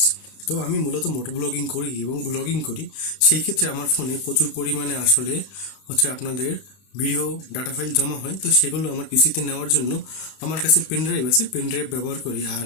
তো আমি মূলত মোটর ব্লগিং করি এবং ব্লগিং করি। সেই ক্ষেত্রে আমার ফোনে প্রচুর পরিমাণে আসলে আপনাদের ভিডিও ডাটা ফাইল জমা হয়। তো সেগুলো আমার পিসিতে নেওয়ার জন্য আমার কাছে পেন ড্রাইভ আছে, পেন ড্রাইভ ব্যবহার করি। আর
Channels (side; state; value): right; late; 32 ms